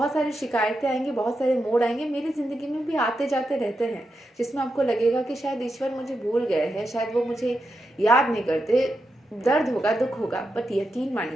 सारी शिकायतें आएंगी, बहुत सारे मोड़ आएंगे, मेरी ज़िंदगी में भी आते जाते रहते हैं, जिसमें आपको लगेगा कि शायद ईश्वर मुझे भूल गए हैं, शायद वो मुझे याद नहीं करते, दर्द होगा, दुख होगा, बट यकीन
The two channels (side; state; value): both; normal; correlation 0.86